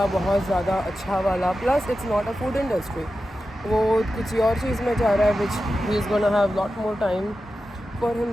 बहुत ज़्यादा अच्छा वाला। Plus it's not a food industry, वो किसी और चीज़ में जा रहा है which he is gonna have lot more time for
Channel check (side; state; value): both; normal; correlation 0.92